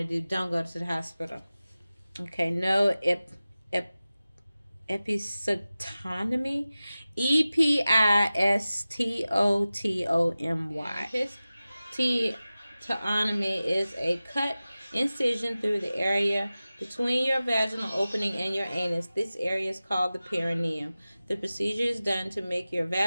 to do, don't go to the hospital. Okay, no episiotomy. Epistotomy. Episiotomy is a cut incision through the area between your vaginal opening and your anus. This area is called the perineum. The procedure is done to make your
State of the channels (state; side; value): inverted; both; correlation -0.96